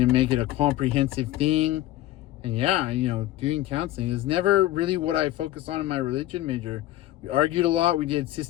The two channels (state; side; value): quieter; right; 14.9 dB